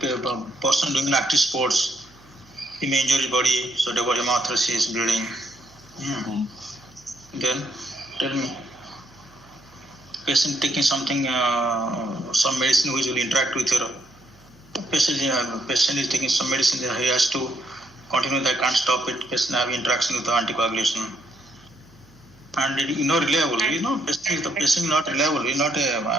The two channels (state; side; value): noise; right; hum, 28 dB below the sound